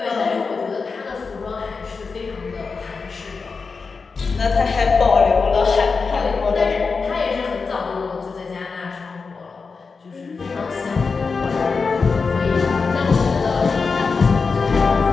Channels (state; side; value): quieter; right; 4.8 dB